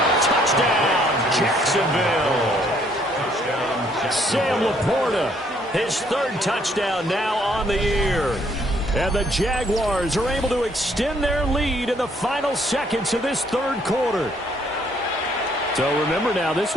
Touchdown, Jacksonville. Sam Laporta, his 3rd touchdown now on the year. And the Jaguars are able to extend their lead in the final seconds of this 3rd quarter. So remember now, this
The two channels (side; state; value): both; normal; correlation 0.66